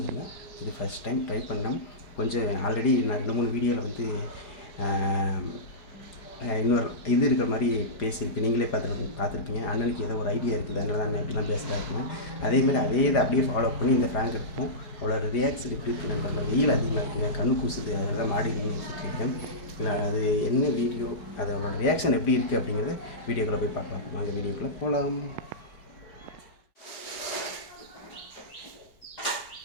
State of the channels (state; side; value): late; right; 4.9 ms